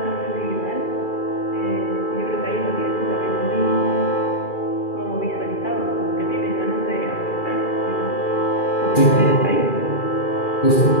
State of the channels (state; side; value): late; right; 2.4 ms